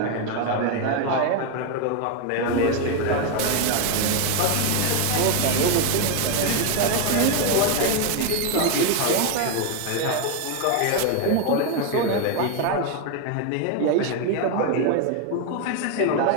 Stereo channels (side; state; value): both; different; correlation 0.01